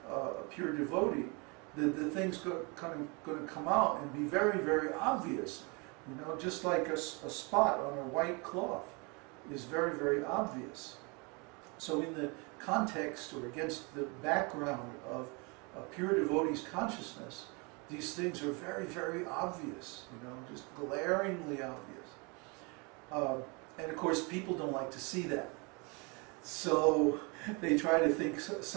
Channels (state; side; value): quieter; left; 30.5 dB